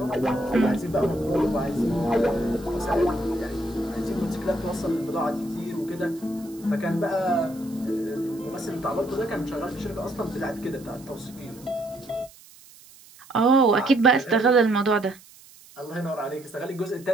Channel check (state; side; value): noise; right; hiss, 23 dB below the sound